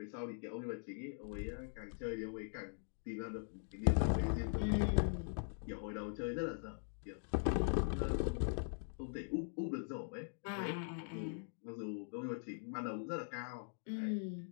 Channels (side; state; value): right; silent; digital silence